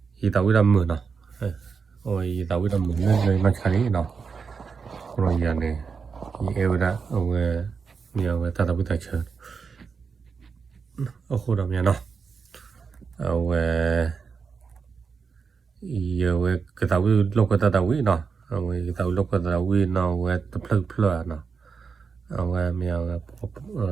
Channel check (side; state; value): left; quieter; 5.5 dB